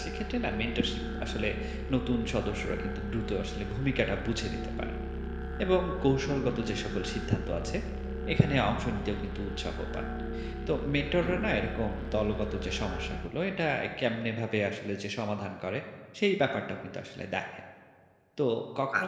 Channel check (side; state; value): both; identical; correlation 1.00